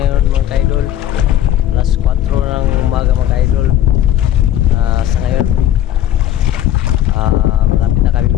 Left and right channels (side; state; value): right; quieter; 11.9 dB